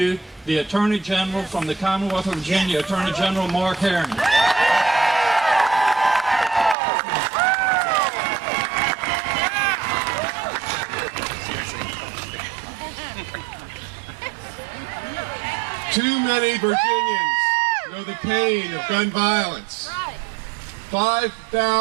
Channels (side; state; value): left; drops out; at 6.8 s